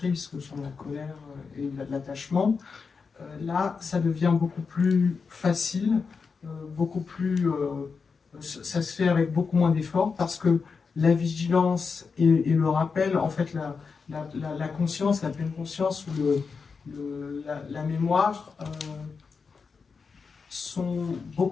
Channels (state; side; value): quieter; right; 5.2 dB